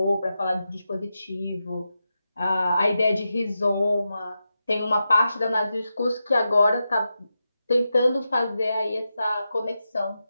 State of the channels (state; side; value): inverted; both; correlation -0.89